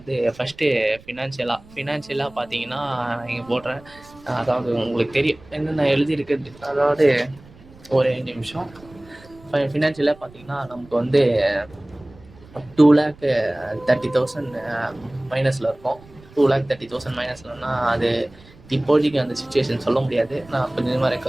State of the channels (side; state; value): right; noise; rumble, 24 dB below the sound